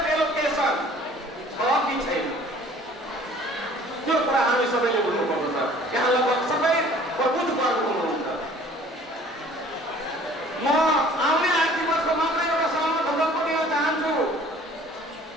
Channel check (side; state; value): both; normal; correlation 0.52